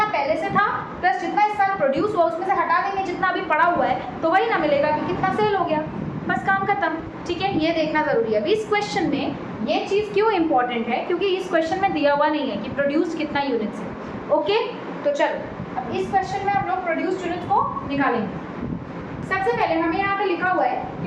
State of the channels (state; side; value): identical; both; correlation 1.00